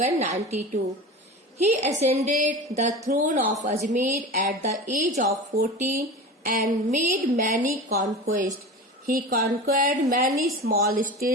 He ascended the throne of Ajmer at the age of 14 and made many conquests. He conquered many small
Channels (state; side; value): normal; both; correlation 0.31